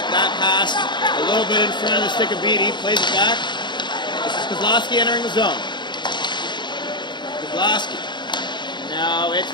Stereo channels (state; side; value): late; right; 0.22 ms